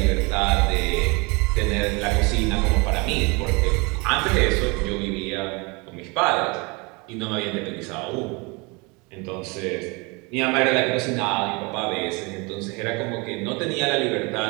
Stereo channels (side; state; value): left; quieter; 28.3 dB